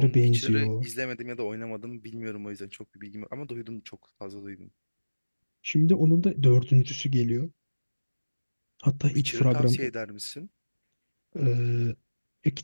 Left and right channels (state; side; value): inverted; both; correlation -1.00